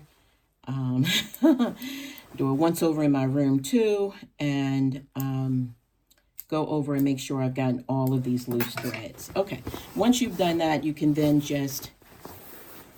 do a once over in my room too, and go over and make sure I've gotten all of these loose threads. Okay, once you've done that, you can then just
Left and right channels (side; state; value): both; identical; correlation 1.00